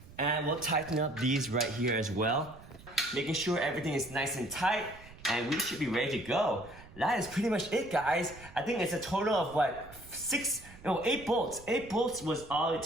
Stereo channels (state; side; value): noise; right; rumble, 19 dB below the sound